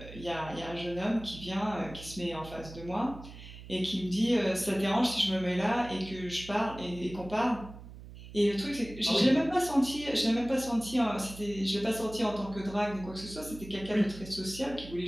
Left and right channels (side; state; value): right; noise; hum, 15 dB below the sound